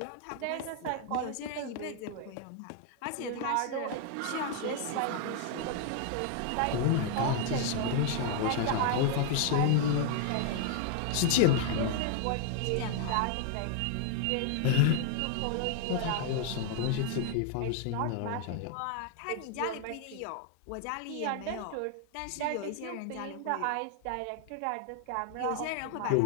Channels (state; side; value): different; both; correlation 0.00